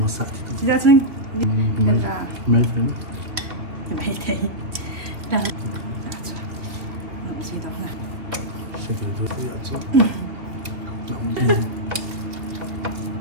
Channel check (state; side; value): late; left; 2.6 ms